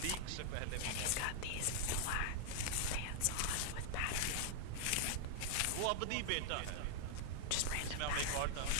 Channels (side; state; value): both; different; correlation 0.00